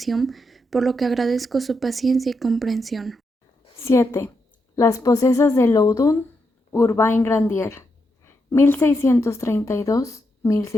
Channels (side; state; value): both; normal; correlation 0.83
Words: por lo que agradezco su paciencia y comprensión. 7. Las posesas de Loudun, Urbain Grandier,